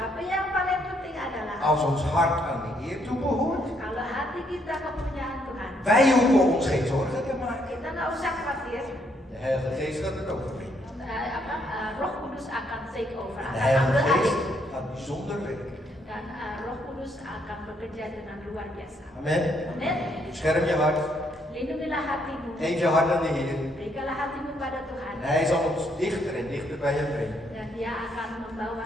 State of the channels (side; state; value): both; normal; correlation 0.72